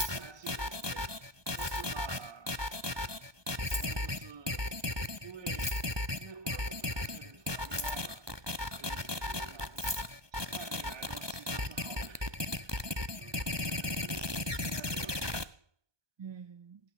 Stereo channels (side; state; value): left; late; 1.2 ms